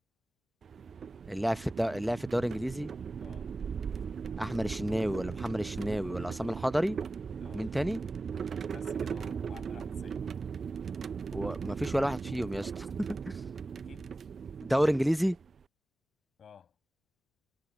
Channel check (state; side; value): normal; both; correlation 0.96